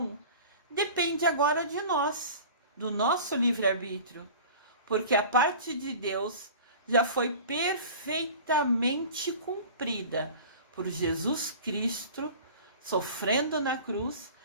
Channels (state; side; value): inverted; both; correlation -0.40